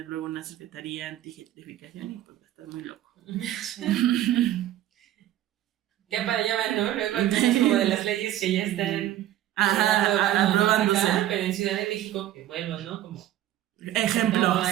luego una secretaría anti-gentrificación y pues va a estar muy loco. Sí. Ya para allá van, ¿no? Luego hay cosas como de las leyes que ya están aprobándose. Pero en Ciudad de México, que vuelvo, ¿no? Como ejemplo. No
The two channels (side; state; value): left; quieter; 13.2 dB